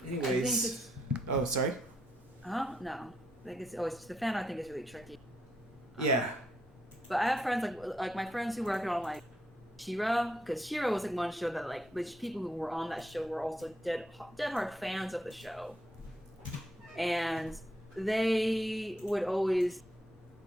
Anyways, oh sorry. No. I think it's always the fan art thing is really tricky. Yeah. But I have friends like my friends who work on like She-Ra, because She-Ra was like one show that like the people who were on that show were also dead hard fans of the show, and they would always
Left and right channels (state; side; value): normal; both; correlation 0.78